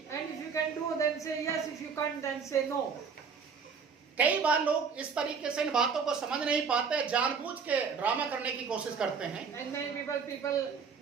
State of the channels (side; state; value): left; quieter; 5.9 dB